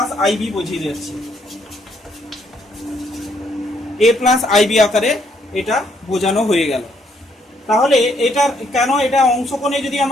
আইবি বুঝিয়ে দিচ্ছি। a প্লাস আইবি আকারে এটা বোঝানো হয়ে গেল। তাহলে এটা কেন, এটা অংশকোণে যদি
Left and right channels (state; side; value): normal; both; correlation 0.70